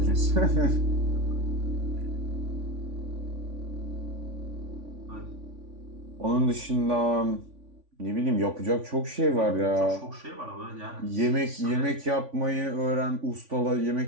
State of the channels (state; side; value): late; left; 3.5 ms